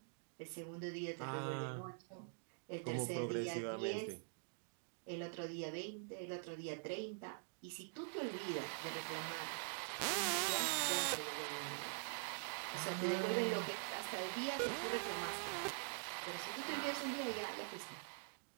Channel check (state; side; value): silent; left; digital silence